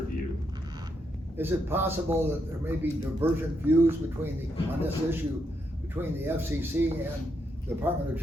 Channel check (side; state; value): both; normal; correlation 0.80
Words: Is it possible that there may be divergent views on this issue between the FCC and the Department of